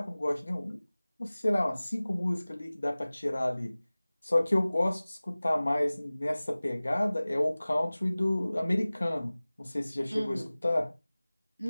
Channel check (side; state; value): both; inverted; correlation -0.99